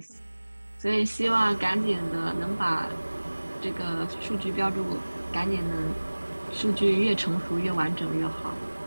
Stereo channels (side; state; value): both; inverted; correlation -1.00